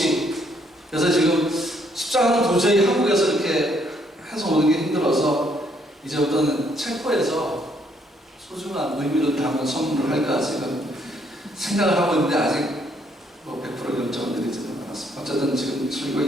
그래서 지금 십자가는 도저히 한국에서 이렇게 해서 오는 게 힘들어서 이제부터는 체코에서 소중한 의미를 담은 선물을 할까 지금 생각을 하고 있는데 아직 100% 결정을 내리지는 않았습니다. 어쨌든 지금 설교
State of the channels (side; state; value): both; normal; correlation 0.69